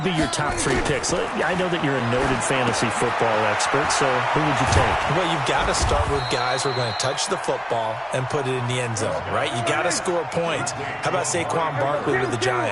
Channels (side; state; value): both; identical; correlation 1.00